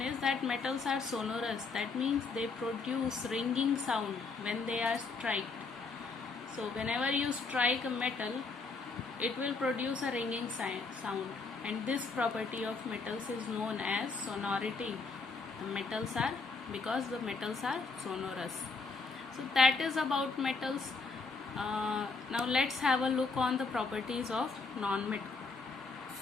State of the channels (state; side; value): quieter; right; 4.3 dB